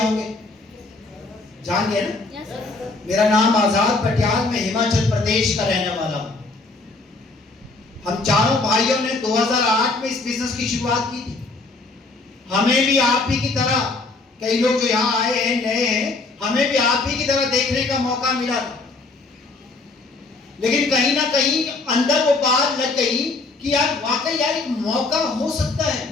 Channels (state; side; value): quieter; right; 3.5 dB